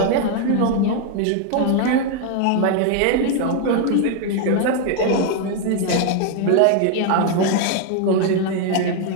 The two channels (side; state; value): both; different; correlation 0.00